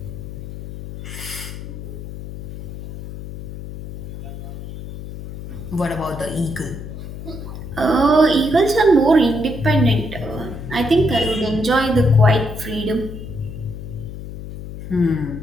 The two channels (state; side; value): noise; left; hum, 10 dB below the sound